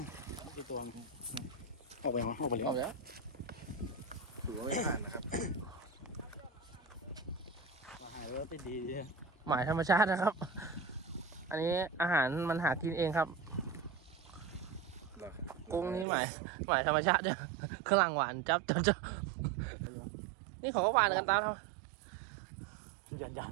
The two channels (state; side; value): drops out; left; at 16.1 s